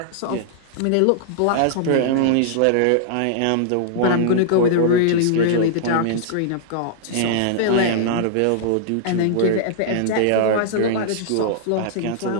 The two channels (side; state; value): both; different; correlation -0.01